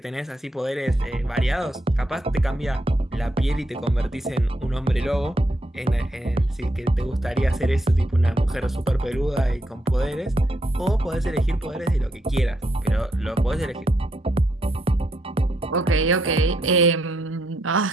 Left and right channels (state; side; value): normal; both; correlation 0.78